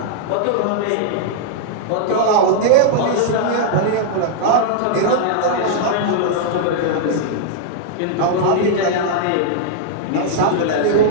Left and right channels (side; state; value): both; different; correlation -0.01